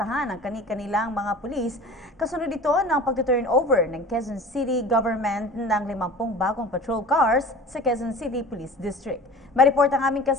ang kanilang mga pulis kasunod ito ng pag-turnover ng Quezon City Government ng 50 bagong patrol cars sa Quezon City Police District. Mareport ang aming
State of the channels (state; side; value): normal; both; correlation 0.40